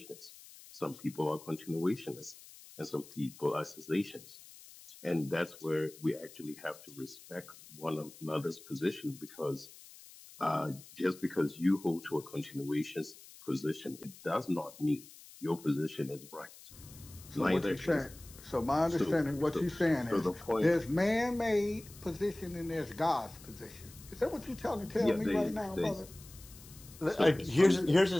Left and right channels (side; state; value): left; noise; hiss, 19 dB below the sound